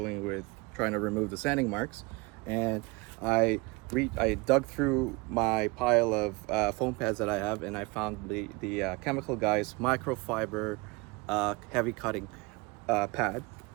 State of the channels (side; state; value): left; quieter; 25.7 dB